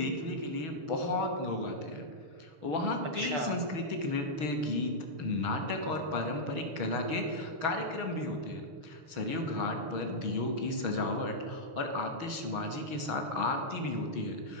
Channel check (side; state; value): left; late; 6.3 ms